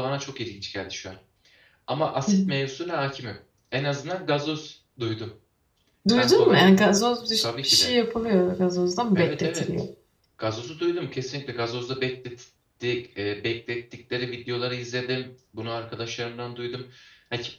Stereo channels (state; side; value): identical; both; correlation 1.00